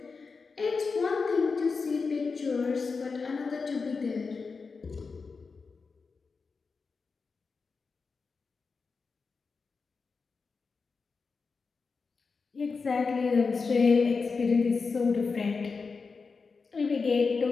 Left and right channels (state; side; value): quieter; right; 4.7 dB